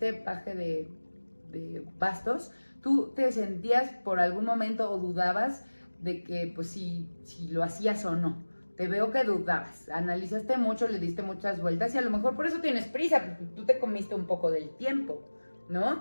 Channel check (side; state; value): both; inverted; correlation -1.00